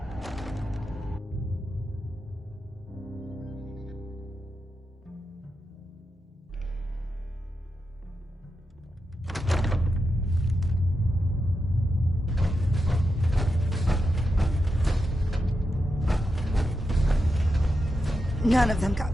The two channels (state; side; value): normal; both; correlation 0.87